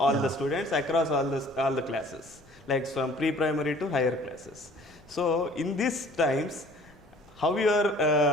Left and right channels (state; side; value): noise; left; rumble, 27 dB below the sound